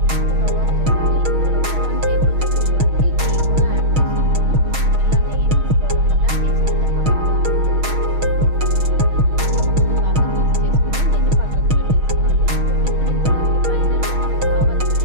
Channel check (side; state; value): left; late; 6.3 ms